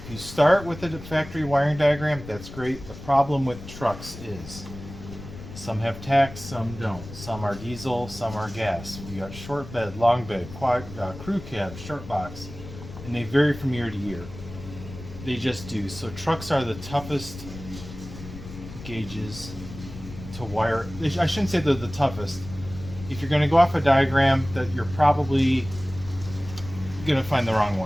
you start with the factory wiring diagram, that's great. The problem with trucks is some have tacks, some don't. Some are diesel, some are gas. You got short bed, long bed, crew cab, short box, and they vary from year to year. They just do. So trucks are the toughest gauges to wire. I shouldn't say they're the toughest. If you're going to go off a diagram, that you're probably going to find the wrong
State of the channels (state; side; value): noise; left; rumble, 13 dB below the sound